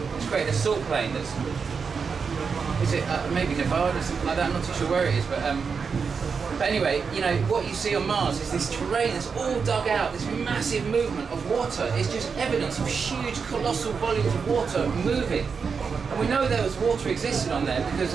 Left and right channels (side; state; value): left; quieter; 5.6 dB